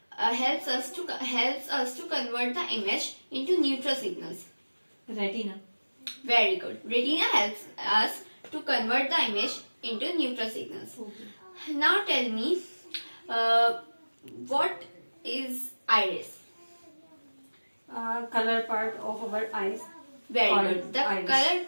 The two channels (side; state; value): both; inverted; correlation -1.00